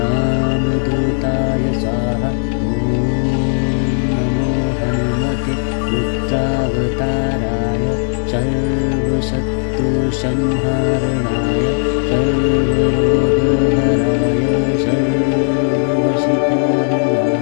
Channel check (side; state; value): right; silent; digital silence